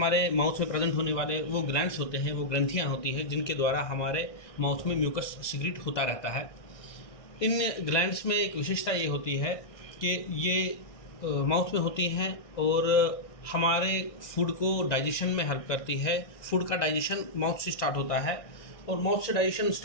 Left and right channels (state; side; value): late; right; 1.6 ms